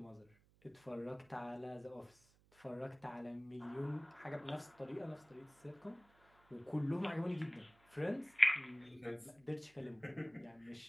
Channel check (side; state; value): right; noise; hum, 30 dB below the sound